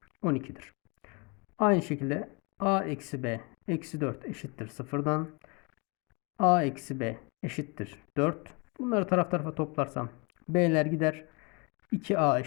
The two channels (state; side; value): quieter; right; 30.4 dB